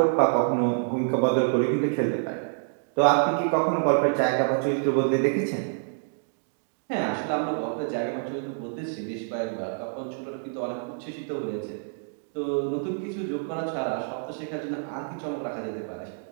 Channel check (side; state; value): left; silent; digital silence